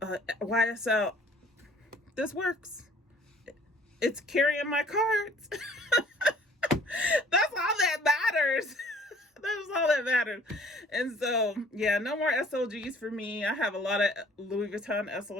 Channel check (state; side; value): normal; both; correlation 0.55